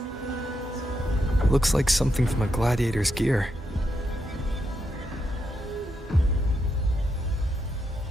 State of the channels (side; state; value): both; normal; correlation 0.82